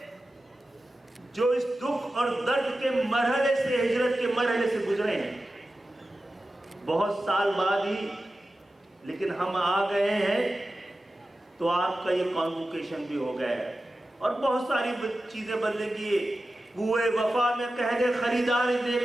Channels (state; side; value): normal; both; correlation 0.93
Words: جو اس دکھ اور درد کے مرحلے سے، ہجرت کے مرحلے سے گزرے ہیں، بہت سال بعد ہی لیکن ہم آ گئے ہیں تو آپ کا یہ کانوکیشن بھی ہو گیا ہے، اور بہت ساری چیزیں بدلیں گی۔ کوئے وفا میں کہہ دے خریدار